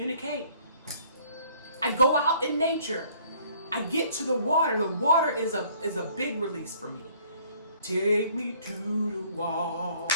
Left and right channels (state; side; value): inverted; both; correlation -0.59